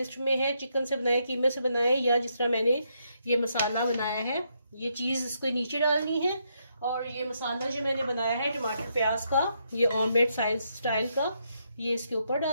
में है, चिकन से बनाए, कीमे से बनाए, या जिस तरह मैंने ये मसाला बनाया है। ये चीज इसको नीचे डालनी है और ये मसाला जो मैंने बनाया है टमाटर प्याज का, ये ऑमलेट स्टाइल का, ये इसके ऊपर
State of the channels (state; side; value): inverted; both; correlation -0.77